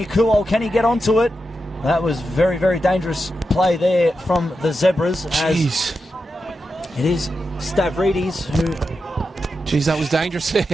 Kuol, can he get onto it? That was very, very dangerous play there from the Zebras. Jeez. It is Stavridis who... Jeez, that was dangerous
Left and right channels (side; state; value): both; normal; correlation 0.88